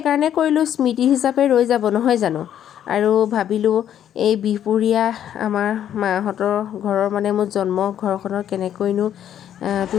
কৰিলোঁ, স্মৃতি হিচাপে ৰৈ যাব নহয় জানো। আৰু ভাবিলোঁ এই বিহপুৰীয়া আমাৰ মাহঁতৰ ঘৰৰ মানে মোৰ জন্ম ঘৰখনৰ কেনেকৈনো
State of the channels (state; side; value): quieter; right; 10.2 dB